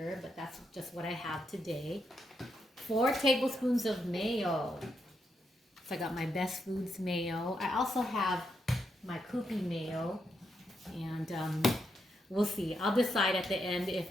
but that's just what I have today. 4 tablespoons of mayo. So I got my Best Foods mayo. I also have my Koopy mayo, and we'll see. I'll decide at the end if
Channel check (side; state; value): both; normal; correlation 0.81